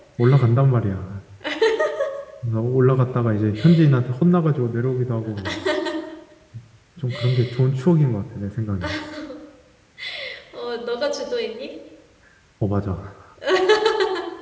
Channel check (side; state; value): both; identical; correlation 1.00